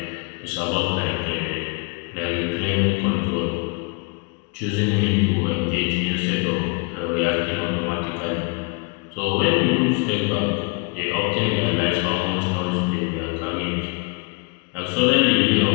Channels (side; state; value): right; quieter; 31.8 dB